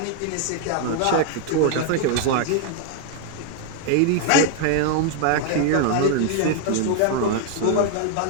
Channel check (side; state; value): both; different; correlation 0.00